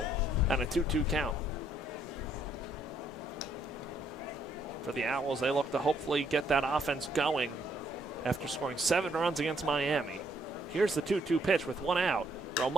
And a 2-2 count. For the Owls, they look to hopefully get that offense going after scoring 7 runs against Miami. Here's the 2-2 pitch with 1 out.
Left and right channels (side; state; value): both; normal; correlation 0.70